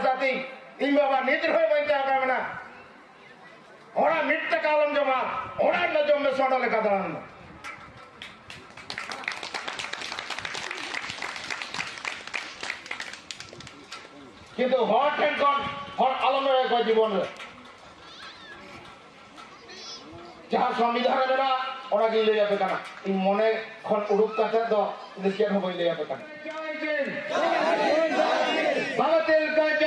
इन बाबा निद्र हो बंचा का मना ओड़ा मिट कालम जमा ओड़ा न जो में सोडा लेका दरन किंतु हॉट एंड कॉन हॉट आलम रे को जीवन रे जहां संविधान मेरा ओना के ले जाबे काना इन मने खन उडुक काते दो देशिया हो ले जाबे काना जय हिंद भारतेल का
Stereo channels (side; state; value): both; identical; correlation 1.00